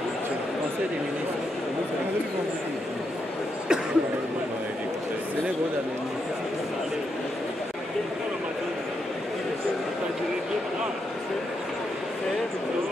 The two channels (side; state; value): both; normal; correlation 0.82